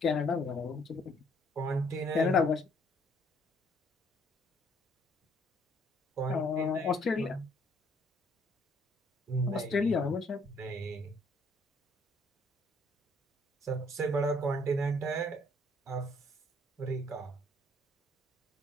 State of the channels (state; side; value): normal; both; correlation 0.65